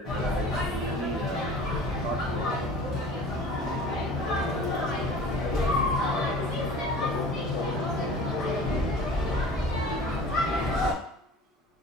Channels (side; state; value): both; normal; correlation 0.42